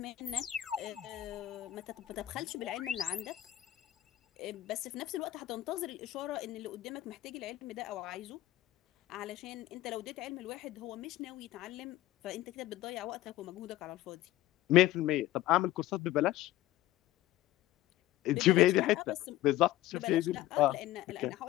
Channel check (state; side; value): quieter; right; 14.7 dB